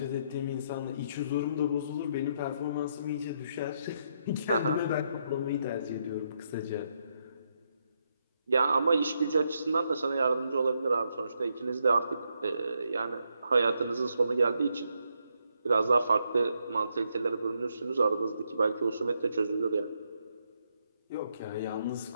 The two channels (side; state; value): both; inverted; correlation -0.78